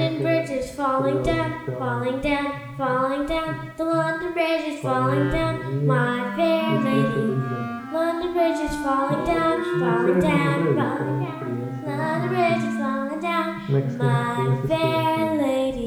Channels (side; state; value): both; identical; correlation 1.00